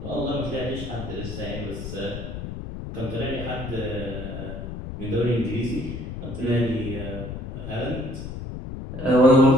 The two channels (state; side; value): noise; left; rumble, 8 dB below the sound